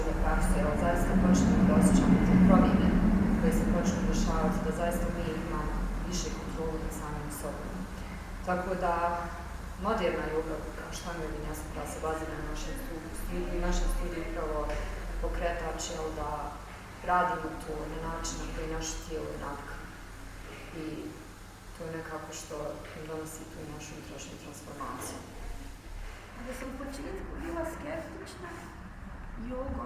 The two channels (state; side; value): identical; both; correlation 1.00